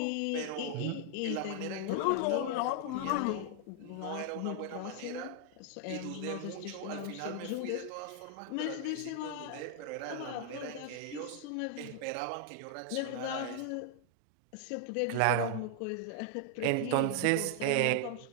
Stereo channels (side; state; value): both; different; correlation 0.00